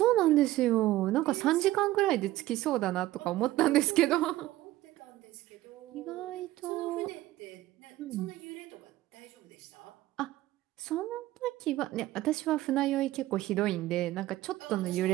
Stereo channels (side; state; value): left; quieter; 16.0 dB